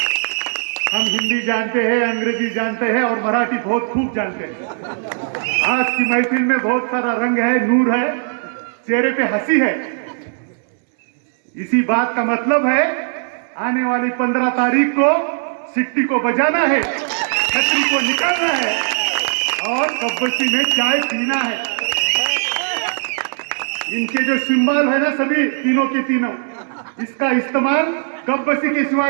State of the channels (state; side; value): silent; left; 67 dB below the other